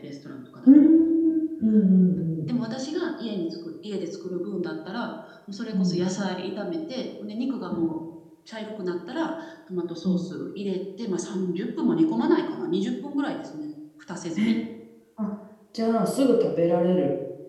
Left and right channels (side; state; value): both; identical; correlation 1.00